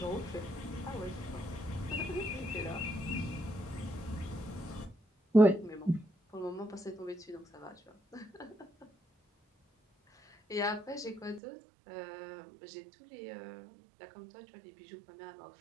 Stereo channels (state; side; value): drops out; left; at 11.4 s